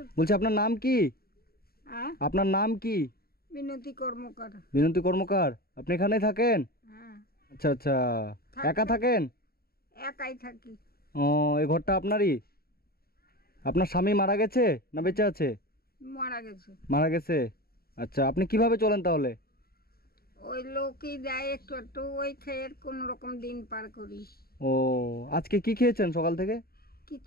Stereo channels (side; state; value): right; late; 0.44 ms